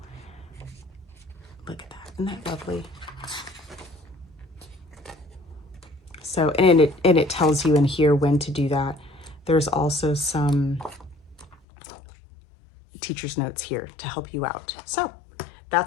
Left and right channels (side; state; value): right; drops out; at 11.6 s